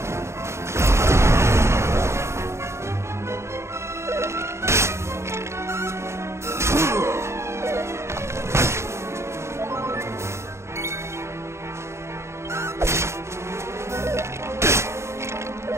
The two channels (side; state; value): left; late; 0.13 ms